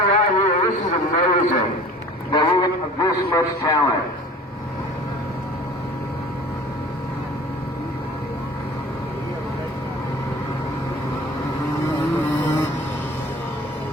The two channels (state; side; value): normal; both; correlation 0.44